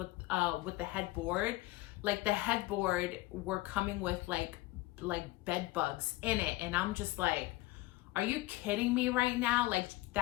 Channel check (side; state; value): right; quieter; 19.3 dB